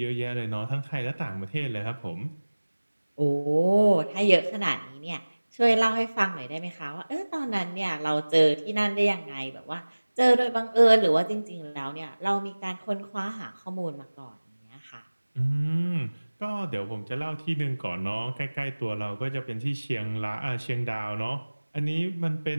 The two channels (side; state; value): both; inverted; correlation -1.00